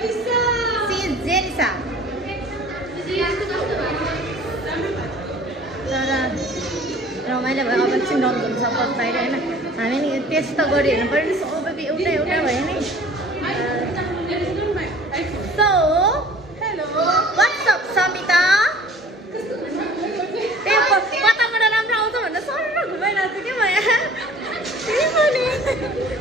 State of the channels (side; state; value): both; normal; correlation 0.48